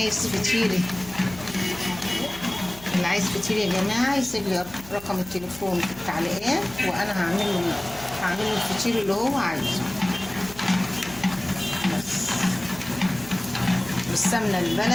فطير، اللي عايز فطير يا جماعة يسيب لي رقم التليفون في التعليقات، وانا هعمل له الفطير اللي هو عايزه. بس بالسمنة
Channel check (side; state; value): left; noise; hum, 19 dB below the sound